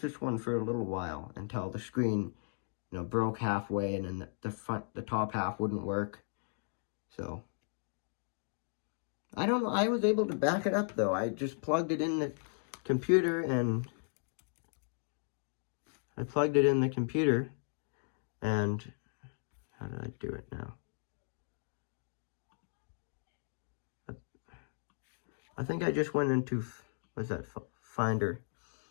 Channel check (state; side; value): silent; right; digital silence